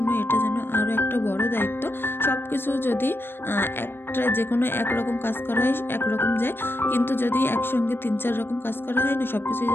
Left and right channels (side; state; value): right; late; 0.10 ms